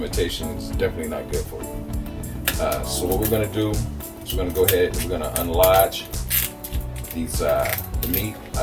is definitely not good for you. So what we're gonna do is we're gonna go ahead and we're gonna unlodge these the meat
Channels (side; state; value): both; identical; correlation 1.00